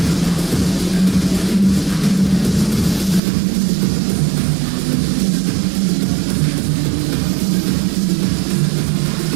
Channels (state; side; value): drops out; left; at 3.2 s